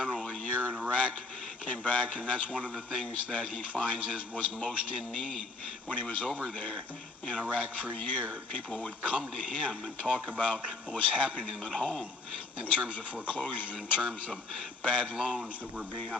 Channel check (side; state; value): right; quieter; 3.6 dB